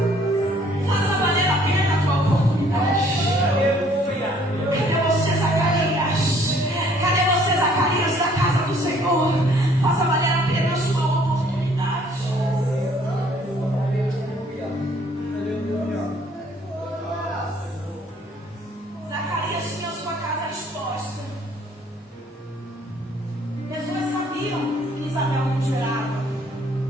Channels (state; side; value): normal; both; correlation 0.60